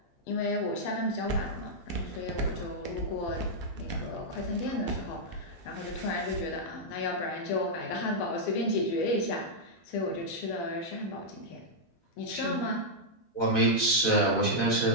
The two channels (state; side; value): late; right; 12 ms